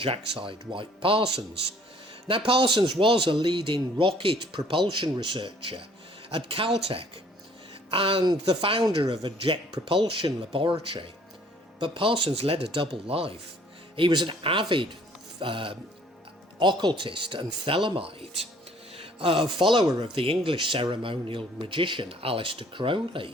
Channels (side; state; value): both; normal; correlation 0.58